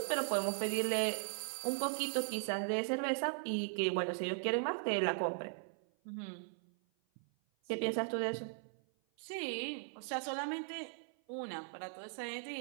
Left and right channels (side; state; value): left; silent; 52 dB below the other